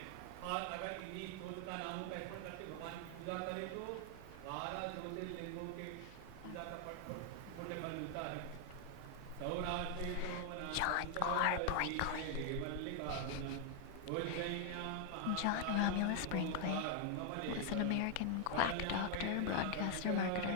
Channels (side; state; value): both; different; correlation 0.00